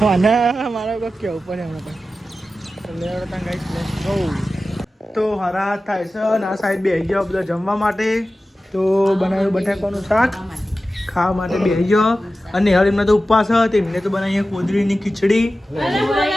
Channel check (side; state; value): both; normal; correlation 0.94